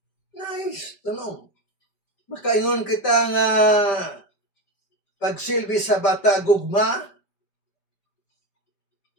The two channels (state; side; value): late; right; 5.1 ms